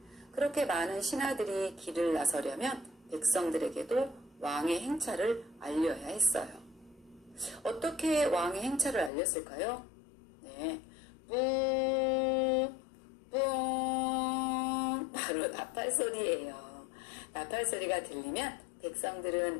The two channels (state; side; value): drops out; right; at 9.1 s